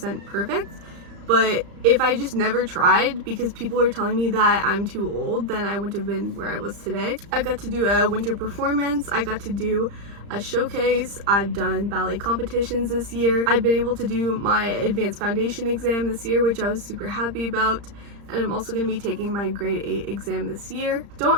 perfect, but if I just never tried because people are telling me that I'm too old, then I wouldn't have been where I was today. I got to do a winter performance, I got to do a showcase, I've done ballet competitions this year, I've been able to do my advanced foundation exam this year, which I was super happy about, and I'm also going to be taking my grade 8 exam this year.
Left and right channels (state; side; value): late; left; 35 ms